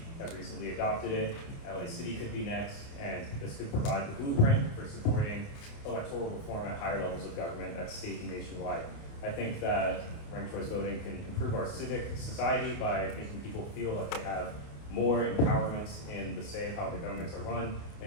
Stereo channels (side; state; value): right; late; 29 ms